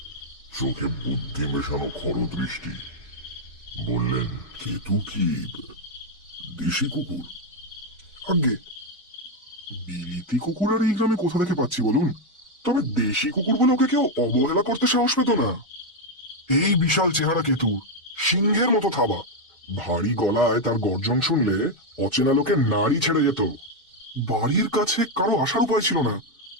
চোখে বুদ্ধি মেশানো খরদৃষ্টি। বললেন, কেতু কি দেশি কুকুর? আগে বিলিতি কুকুর আর এই গ্রামে কোথা থেকে পাচ্ছি বলুন? তবে দেশি কুকুর বলে ওকে কেউ অবহেলা করতে সাহস পেত না। এই বিশাল চেহারা কেতু, সিংহের মতো থাবা, ভারী গলায় তার গর্জন শুনলে অচেনা লোকে নাড়ি ছেড়ে যেত। বাড়ির কাছে কারো আসার উপায় ছিল না,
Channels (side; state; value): both; normal; correlation 0.03